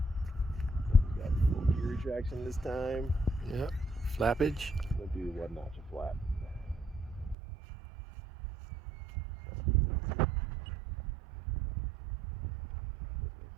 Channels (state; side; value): drops out; left; at 7.4 s